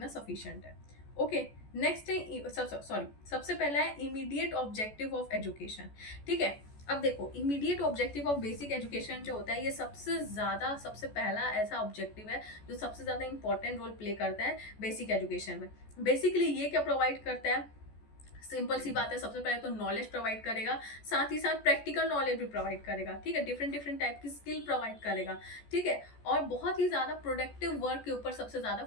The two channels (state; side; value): late; right; 14 ms